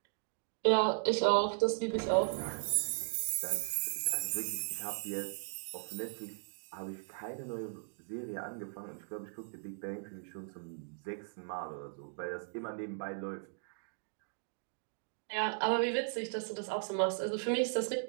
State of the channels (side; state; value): left; silent; digital silence